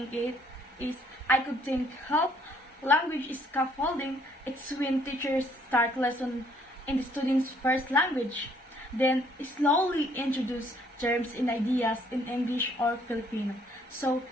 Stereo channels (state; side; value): normal; both; correlation 0.64